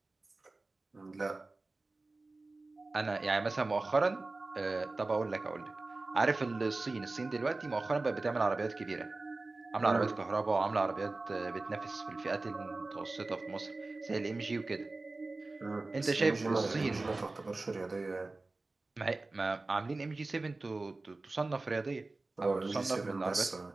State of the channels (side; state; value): left; quieter; 3.3 dB